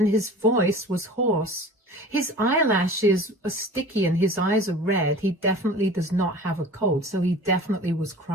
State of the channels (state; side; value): normal; both; correlation 0.40